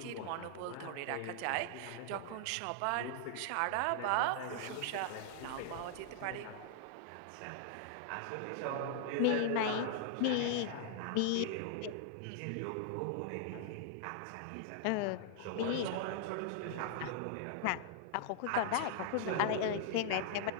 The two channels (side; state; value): both; different; correlation -0.01